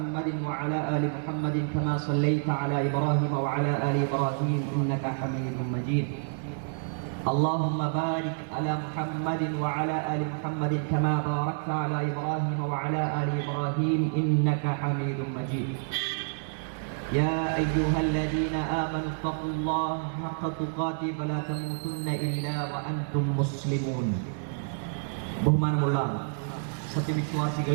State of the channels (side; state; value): left; silent; 59 dB below the other